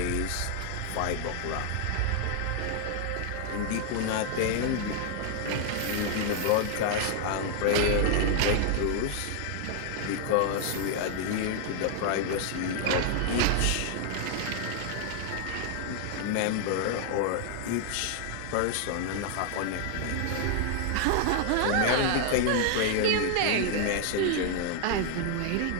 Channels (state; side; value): different; both; correlation 0.00